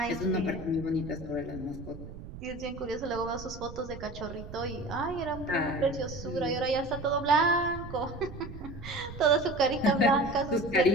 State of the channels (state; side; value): noise; right; rumble, 13 dB below the sound